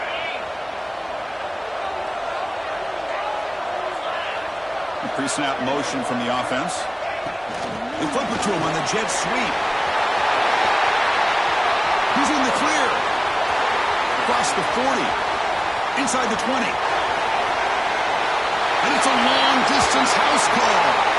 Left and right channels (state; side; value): identical; both; correlation 1.00